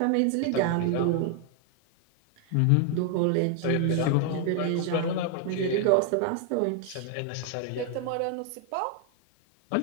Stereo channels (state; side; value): different; both; correlation 0.00